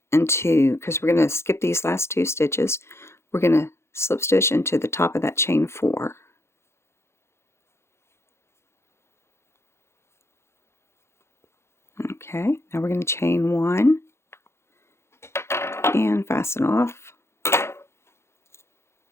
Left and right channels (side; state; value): right; late; 0.13 ms